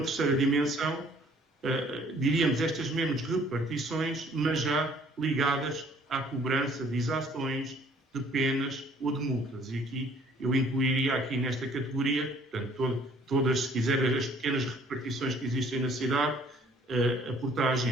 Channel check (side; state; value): both; normal; correlation 0.58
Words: dimensão, diríamos estas mesmas repartições, mas já ligadas à cobrança de exações, de penas ou de multas. E aqui eu incluiria aqui nesta categoria, portanto, todas, se quiser, as pequenas repartições que existem na cidade, a